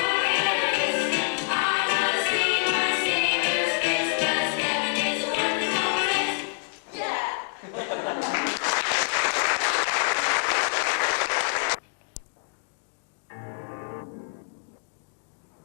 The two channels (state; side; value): silent; right; 61 dB below the other